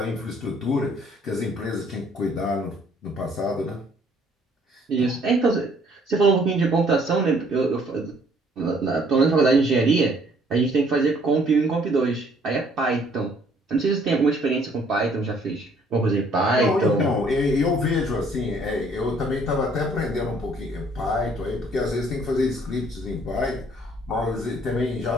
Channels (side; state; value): both; normal; correlation 0.62